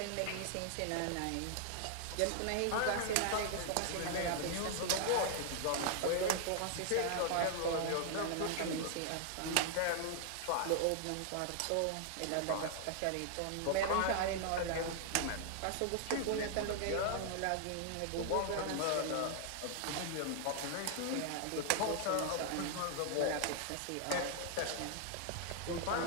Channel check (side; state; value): both; different; correlation 0.00